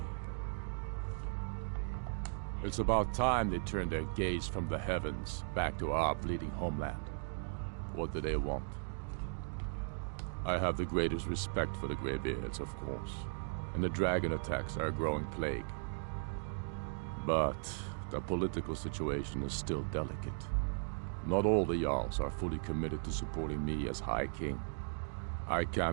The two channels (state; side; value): silent; left; digital silence